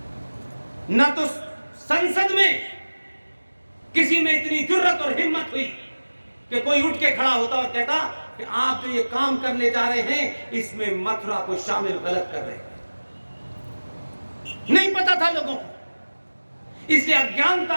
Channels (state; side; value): inverted; both; correlation -1.00